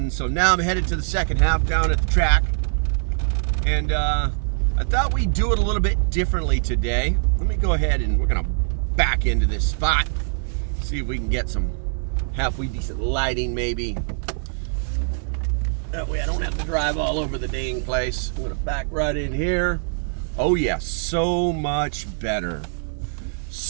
so now I'm headed to the second half down at the track. And I thought we'd do it a little bit differently today. Let me go ahead and we're going to back into this spot. See if we can get some halfway decent lighting maybe. That way I don't have to drive all over the dang place. I'm gonna back right in here. Oh yeah, so much better.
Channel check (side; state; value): left; silent; 63 dB below the other